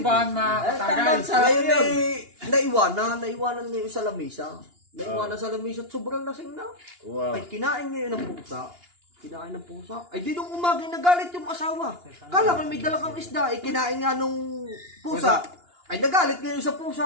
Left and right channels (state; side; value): late; left; 2.8 ms